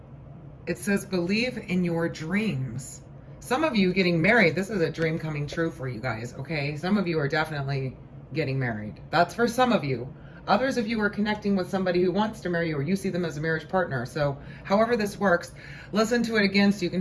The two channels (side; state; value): both; identical; correlation 1.00